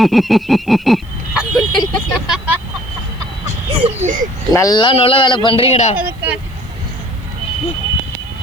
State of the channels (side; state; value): left; noise; hiss, 30 dB below the sound